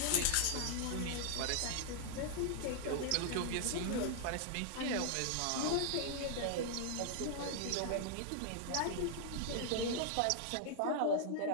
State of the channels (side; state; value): both; different; correlation 0.00